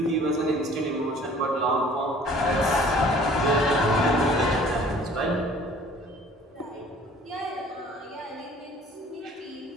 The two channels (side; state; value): both; normal; correlation 0.51